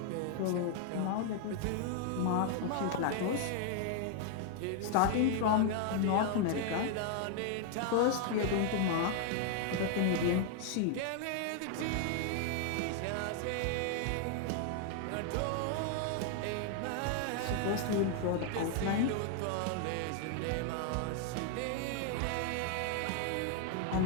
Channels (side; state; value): both; different; correlation 0.00